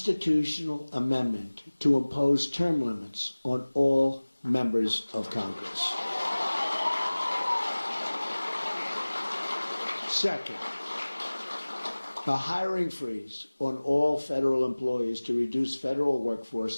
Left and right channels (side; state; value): both; inverted; correlation -1.00